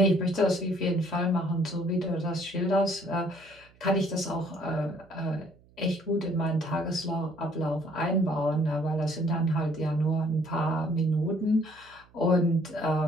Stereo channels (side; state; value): right; noise; hum, 29 dB below the sound